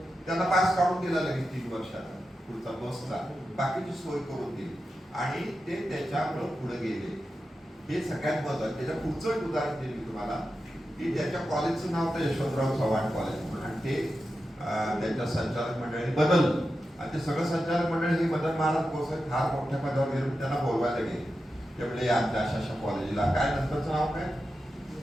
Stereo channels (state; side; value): normal; both; correlation 0.90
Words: त्यांना पास काढून दिला लगेच 3 वर्षाचा पुढचा बसचा, बाकीची सोय करून दिली आणि ते त्याच्यामुळे पुढे गेले. हे सगळ्यात महत्त्वाचं. त्याच्या पुढचं एक उदाहरण दिलं तुम्हाला की त्याच्या कॉलेजचं नाव तर यशवंतराव चव्हाण कॉलेज म्हणून, आणि ते त्यांच्या संचालक मंडळाने बदललं. आणि ते सगळं संचालक मंडळ हे मदन महाराज गोसावी फार मोठ्या पदावर गेले, त्यांना बोलवायला गेले. ते म्हणजे आमच्या अशा कॉलेजला काय, नंतरचं नाव काय,